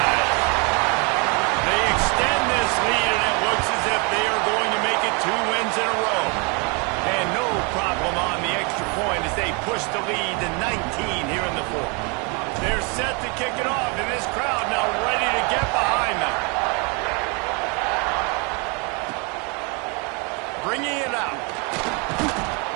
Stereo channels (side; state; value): left; quieter; 32.4 dB